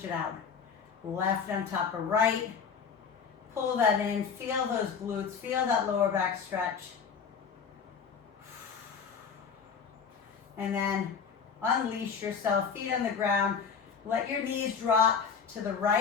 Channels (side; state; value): right; quieter; 6.2 dB